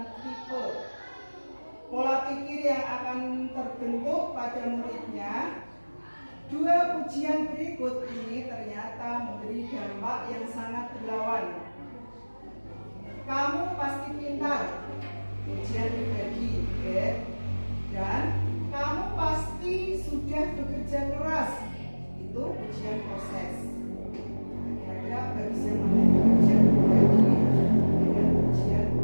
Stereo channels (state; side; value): inverted; both; correlation -1.00